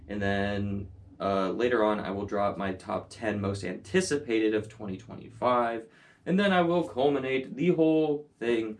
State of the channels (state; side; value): identical; both; correlation 1.00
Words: and then later on I will drop my top 10 most anticipated of 2025, and then I will culminate the whole thing